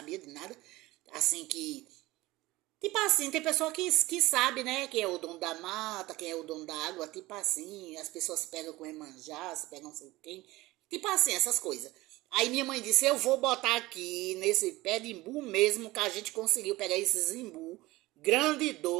de nada, assim que tipo assim, tem pessoa que sabe, né? Quem é o dono da mata, quem é o dono da água, tipo assim. As pessoas se pegam com Emanjá, se pegam não sei quem. Tipo assim, essas coisas. Aí minha mãe disse, eu vou botar aqui nesse pé de imbu mesmo, que a gente conseguiu pegar esses imbu, grande e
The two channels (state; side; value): quieter; left; 19.3 dB